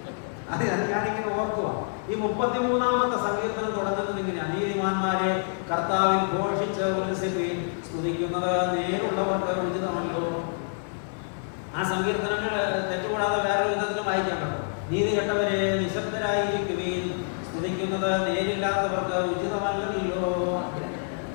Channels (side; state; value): right; silent; digital silence